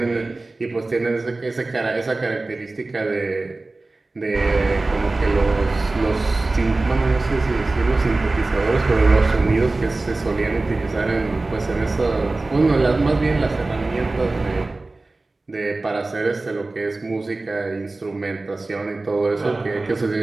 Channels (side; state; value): left; quieter; 3.2 dB